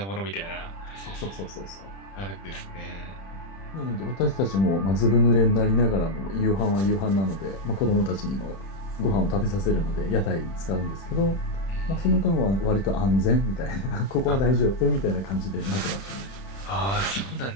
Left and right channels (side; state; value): right; late; 31 ms